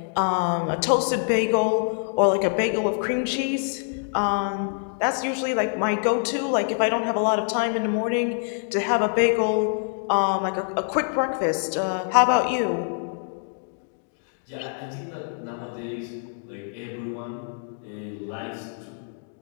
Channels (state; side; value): silent; right; digital silence